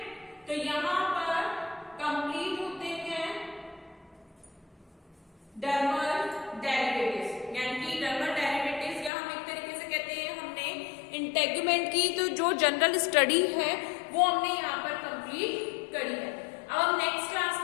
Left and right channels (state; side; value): drops out; right; at 9.1 s